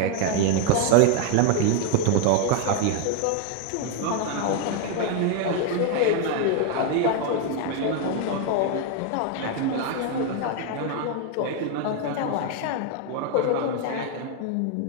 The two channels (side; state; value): both; different; correlation 0.01